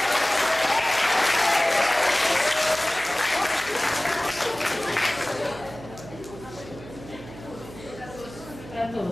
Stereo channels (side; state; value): right; noise; hum, 16 dB below the sound